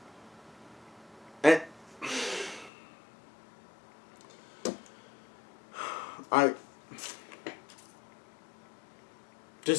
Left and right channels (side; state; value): right; drops out; at 2.7 s